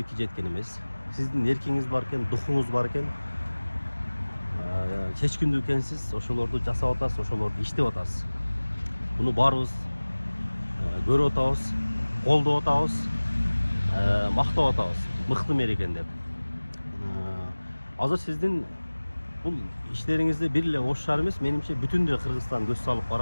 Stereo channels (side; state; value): both; inverted; correlation -1.00